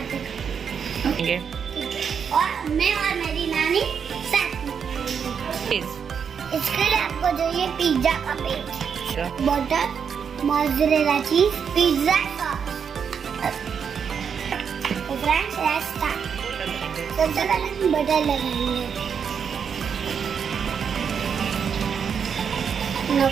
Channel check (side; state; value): left; quieter; 7.0 dB